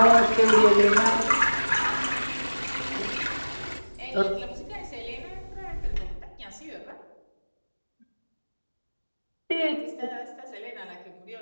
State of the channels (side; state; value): both; inverted; correlation -1.00